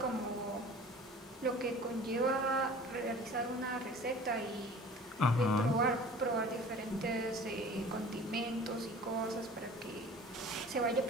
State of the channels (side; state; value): both; normal; correlation 0.44